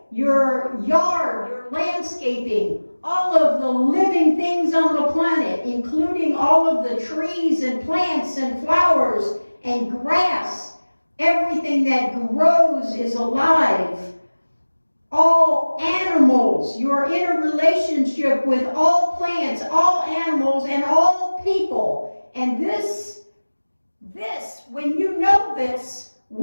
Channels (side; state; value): both; inverted; correlation -1.00